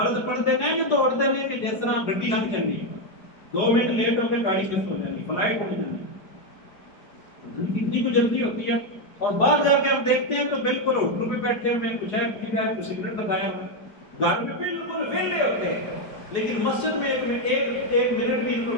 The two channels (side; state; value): right; late; 4.8 ms